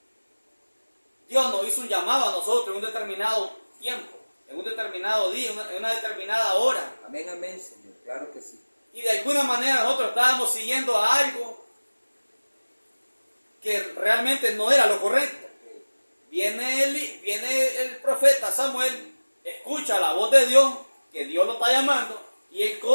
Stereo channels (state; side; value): inverted; both; correlation -1.00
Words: Dios nos hizo un llamado a nosotros en un determinado tiempo, en un determinado día, en una determinada hora. Amén, amén, Señor, claro que sí. Y de alguna manera nosotros estábamos siguiendo a algo que realmente no era lo correcto. Viene el profeta Samuel, escucha la voz de Dios, que Dios lo está llamando, y él